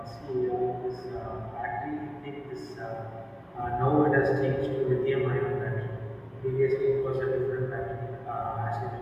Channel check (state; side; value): identical; both; correlation 1.00